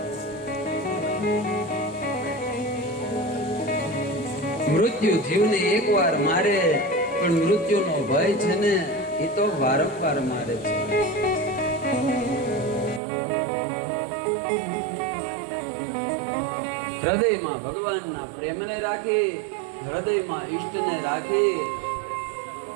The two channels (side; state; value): left; drops out; at 13.0 s